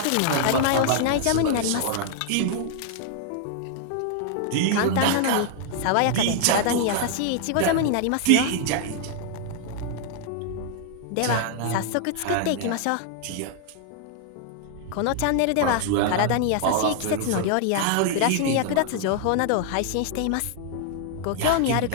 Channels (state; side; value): different; both; correlation 0.00